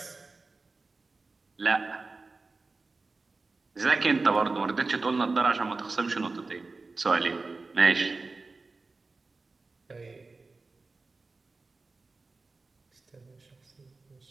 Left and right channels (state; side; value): quieter; left; 3.7 dB